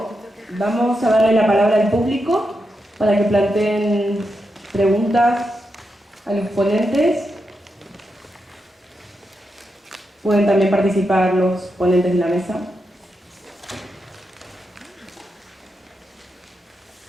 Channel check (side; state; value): both; normal; correlation 0.86